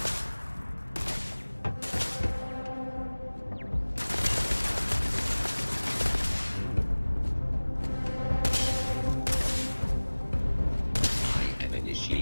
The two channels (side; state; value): both; inverted; correlation -1.00